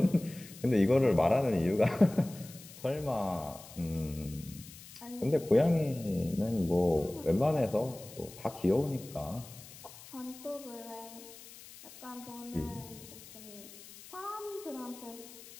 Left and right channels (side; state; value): left; noise; hiss, 18 dB below the sound